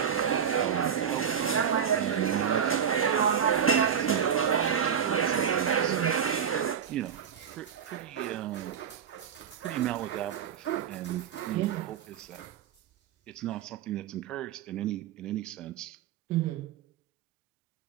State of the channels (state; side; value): quieter; left; 8.1 dB